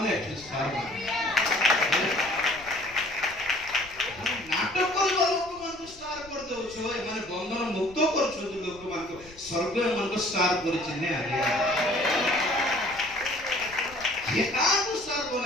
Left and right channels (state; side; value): noise; left; rumble, 22 dB below the sound